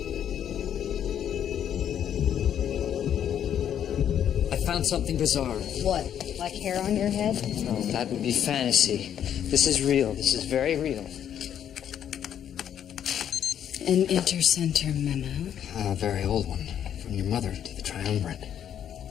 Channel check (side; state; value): right; quieter; 9.6 dB